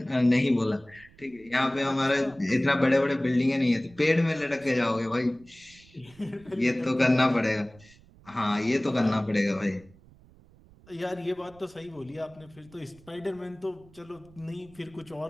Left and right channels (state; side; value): noise; right; rumble, 25 dB below the sound